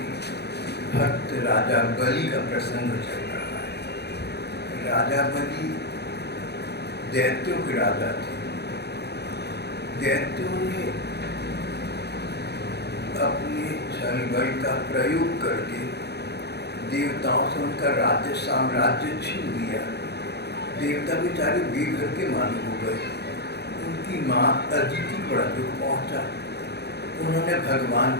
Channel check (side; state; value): right; late; 0.48 ms